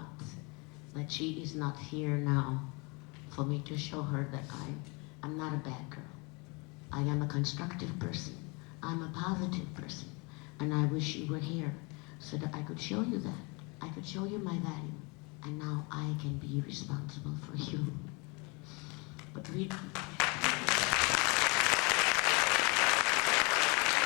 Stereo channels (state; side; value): quieter; right; 29.4 dB